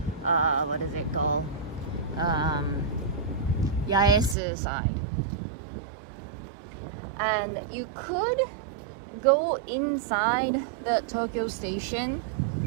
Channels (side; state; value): left; drops out; at 4.4 s